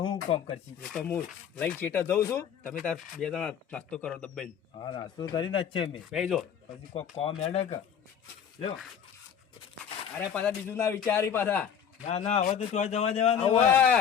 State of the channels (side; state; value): right; quieter; 8.0 dB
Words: હું કોમ કરશી. એ તો હું લઈને ચેટા જઉં છું તમે તાર બે જણા નાસ્તો કરો દબાઈને હા નાસ્તો કરીને જ છે મેં બેજો પછી કોઈ કોમ હેડે કે લ્યો. અરે પાછા બીજું ના વિચારી પાછા ના ના હવે તો ચોય જવા દેવાનું હવે